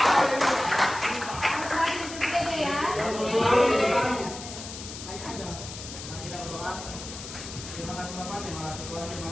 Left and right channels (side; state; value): left; noise; hiss, 11 dB below the sound